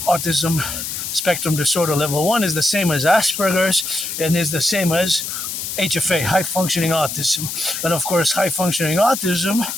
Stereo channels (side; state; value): left; noise; hiss, 5 dB below the sound